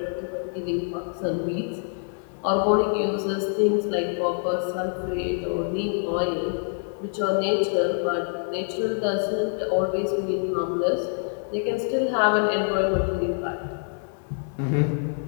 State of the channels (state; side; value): silent; right; digital silence